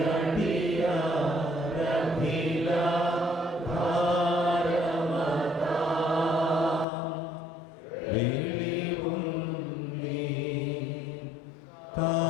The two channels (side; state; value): right; drops out; at 6.9 s